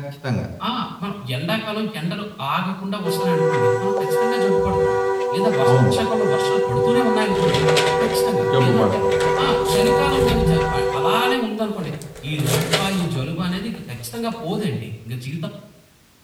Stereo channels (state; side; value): identical; both; correlation 1.00